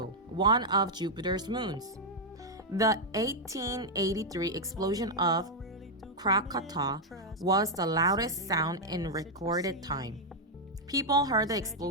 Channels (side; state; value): both; normal; correlation -0.02